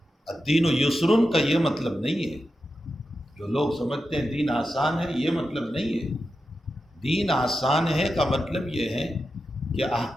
الدین یسرن کا یہ مطلب نہیں ہے جو لوگ سمجھتے ہیں دین آسان ہے، یہ مطلب نہیں ہے۔ دین آسان ہے کا مطلب یہ ہے کہ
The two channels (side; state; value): both; normal; correlation 0.90